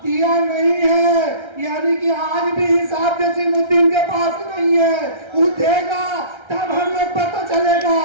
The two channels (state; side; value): late; left; 1.3 ms